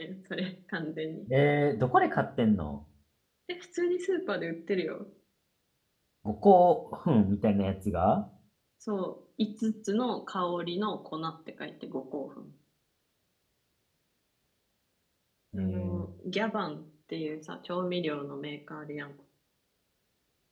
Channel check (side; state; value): both; identical; correlation 1.00